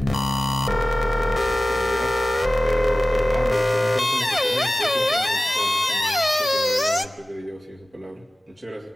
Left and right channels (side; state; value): both; normal; correlation 0.97